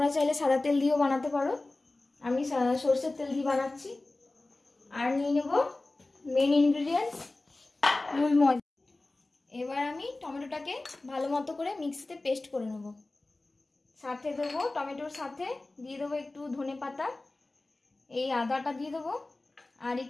চাইলে সাদা তেল দিয়েও বানাতে পারো, আমি সর্ষের তেল দিয়ে বানাচ্ছি। আর নিয়ে নেব মেন ইনগ্রিডিয়েন্টস, মূল ময়দা। এবার আমি টমেটোটাকে ভালো মতো করে মিক্সিতে পেস্ট করে নেব। সাথে দেবো টমেটোর সাথে দিয়ে দেবো একটু ধনেপাতা, এই আদাটা দিয়ে দেবো, আর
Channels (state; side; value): quieter; right; 3.0 dB